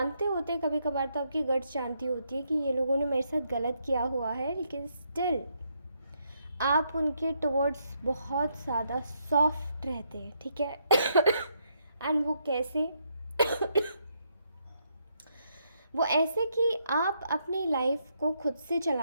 होते कभी कभार, तो आपकी गट्स जानती होती है कि ये लोगों ने मेरे साथ गलत किया हुआ है, लेकिन स्टिल आप उनके टुवर्ड्स बहुत ज़्यादा सॉफ्ट रहते हैं, ठीक है। एंड वो कैसे वो ऐसे कि आप अपनी लाइफ को खुद से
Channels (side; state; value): both; inverted; correlation -0.76